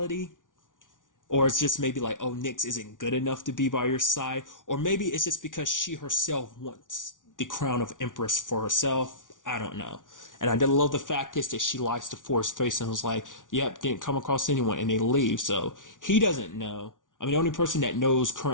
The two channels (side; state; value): right; late; 0.88 ms